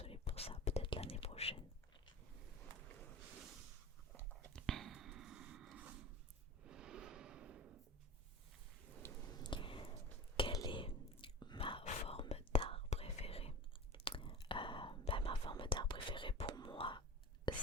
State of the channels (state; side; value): normal; both; correlation 0.34